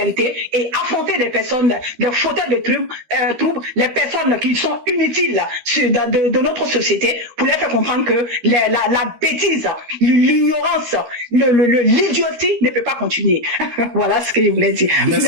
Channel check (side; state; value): left; late; 13 ms